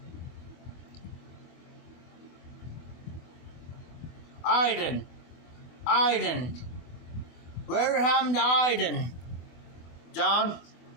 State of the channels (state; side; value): late; right; 24 ms